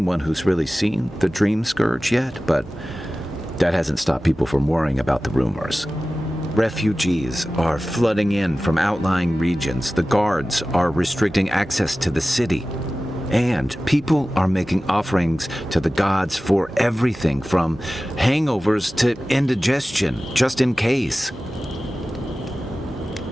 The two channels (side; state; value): both; normal; correlation 0.96